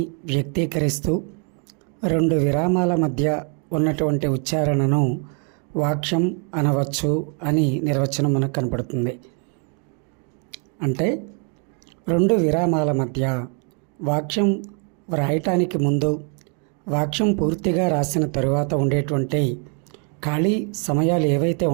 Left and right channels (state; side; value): quieter; left; 39.8 dB